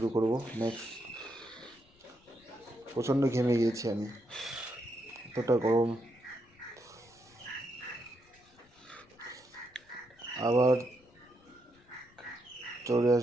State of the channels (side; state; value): left; noise; rumble, 30 dB below the sound